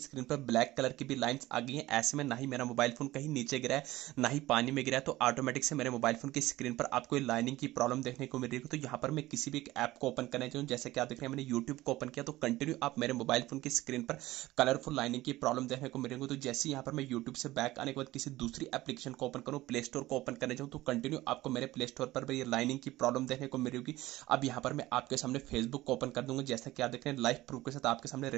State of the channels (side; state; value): left; quieter; 17.2 dB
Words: पर ब्लैक कलर की भी लाइंस आ गई है। ऐसे में ना ही मेरा मोबाइल फोन कहीं नीचे गिरा है ना ही पानी में गिरा है, तो ऑटोमेटिक से मेरे मोबाइल फोन की स्क्रीन पर आपको लाइनिंग की प्रॉब्लम देखने को मिल रही है। तो यहाँ पर मैं किसी भी एक ऐप को ओपन करना चाहूँ, जैसे कि आप देख रहे हैं मैंने यूट्यूब को ओपन किया, तो कंटिन्यू आप मेरे मोबाइल फोन की स्क्रीन पर कलरफुल लाइनिंग की प्रॉब्लम देखने को मिलेंगे। तो जैसे यहाँ पर मैं यूट्यूब से बैक आने के बाद किसी दूसरी एप्लीकेशन को ओपन करूँ, प्ले स्टोर को ओपन करने जाऊँ, तो कंटिन्यू आपको मेरे प्ले स्टोर पर भी ये लाइनिंग की प्रॉब्लम देखने को मिलेगी। अब यहाँ पर मैं आपके सामने फेसबुक को ओपन कर दूंगा, जैसा कि आप देख रहे हैं लाइव प्रूफ के साथ आपके सामने